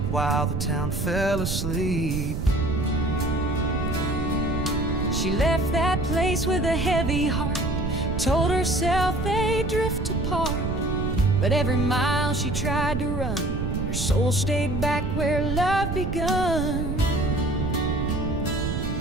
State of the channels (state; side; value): noise; right; rumble, 2 dB below the sound